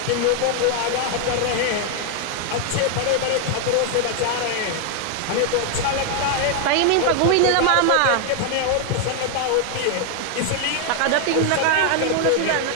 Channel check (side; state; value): both; different; correlation 0.00